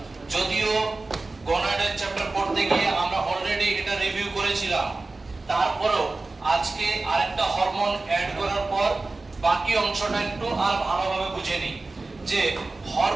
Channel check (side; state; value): left; quieter; 3.4 dB